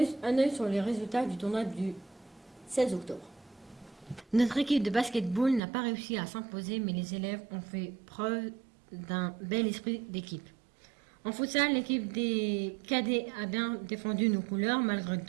les résultats du tournoi du 16 octobre. Notre équipe de basketball n'a pas réussi à s'imposer, mais les élèves ont fait preuve d'un bel esprit d'équipe. En futsal, l'équipe des cadets a bien défendu nos couleurs malgré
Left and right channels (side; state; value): left; drops out; at 5.6 s